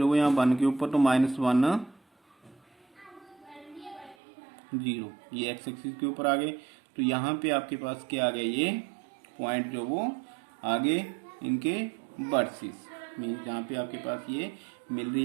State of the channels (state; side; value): drops out; left; at 4.2 s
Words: है यहाँ 1 के ऊपर, तो -1 0, ये x एक्सिस के ऊपर आ गए। तो यहाँ पे आपके पास क्या आ गया, ये पॉइंट जो वो आगे इनके वर्सेस, मीन जहाँ पे आपके पास ये मिल रही